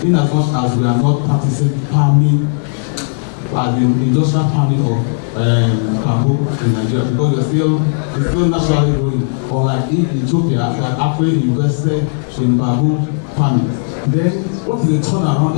In as much as we are not practicing palming, as in industrial palming of bamboo in Nigeria, because it's still naturally growing. Unlike Ethiopia that actually invested in bamboo farming. Then what is the turnaround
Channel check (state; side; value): silent; right; digital silence